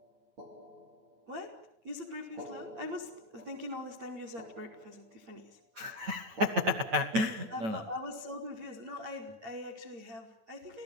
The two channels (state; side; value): late; left; 9.1 ms